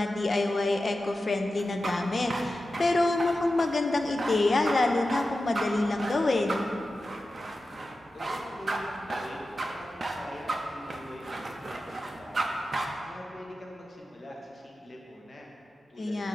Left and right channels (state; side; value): normal; both; correlation 0.93